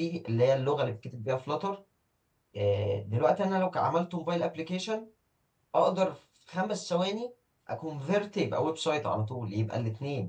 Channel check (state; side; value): identical; both; correlation 1.00